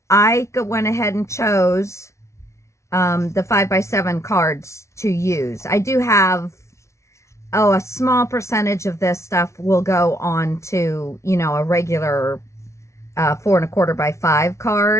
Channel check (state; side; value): late; right; 0.14 ms